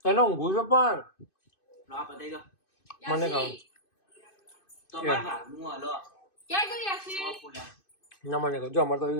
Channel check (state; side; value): late; right; 2.6 ms